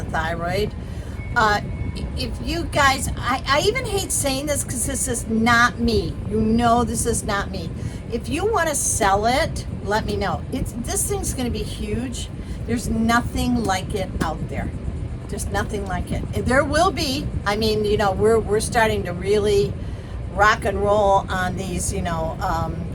thyroid. If you guys, I even hate saying this because this is not me. You know, this is not me. If you want to sell it, let me know. This thing's going to be huge. There's nothing like it out there. Just nothing like it. There will be. I mean, you know, we're starting to really rock and roll on these, you know,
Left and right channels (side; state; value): both; identical; correlation 1.00